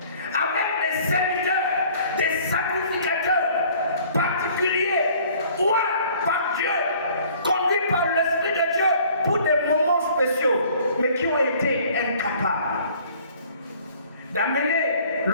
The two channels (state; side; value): inverted; both; correlation -0.54